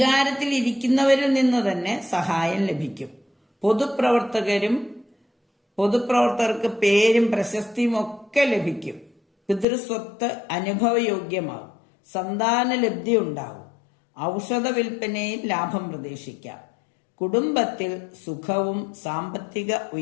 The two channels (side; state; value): right; drops out; at 9.7 s